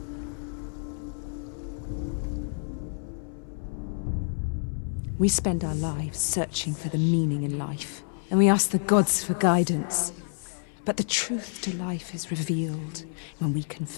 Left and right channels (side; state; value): right; silent; 59 dB below the other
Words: We spend our lives searching for the meaning in life, and we ask the gods for guidance. But the truth to life is revealed when we can